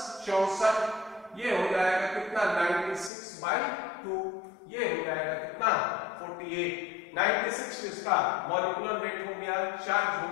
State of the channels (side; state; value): right; drops out; at 3.1 s